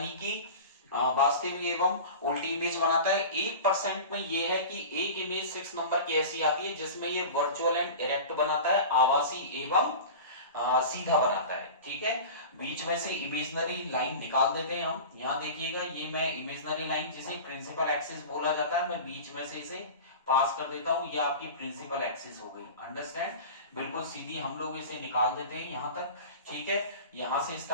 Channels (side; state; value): both; inverted; correlation -0.33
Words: कि वास्तविक एवं उल्टी इमेज बनाता है। 1% में ये है कि एक इमेज 6 नंबर की ऐसी आती है जिसमें ये वर्चुअल एंड इरेक्ट बनाता है, आभासी एवं सीधा बनाता है, ठीक है। बीच में से इमेजनरी लाइन निकाल देते हैं हम। यहां देखिएगा, ये मैं इमेजनरी लाइन जिसे प्रिंसिपल एक्सिस बोला जाता है, मैं बीच में से इसे पास कर देता हूं, ये आपकी प्रिंसिपल एक्सिस हो गई, अंडरस्टैंड। बिल्कुल सीधी हम लोग इसे निकाल देते हैं यहां तक, ठीक है। यहां से